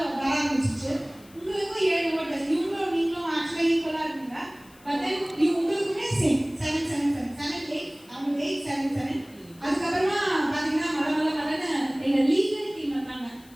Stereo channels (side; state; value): left; noise; hiss, 26 dB below the sound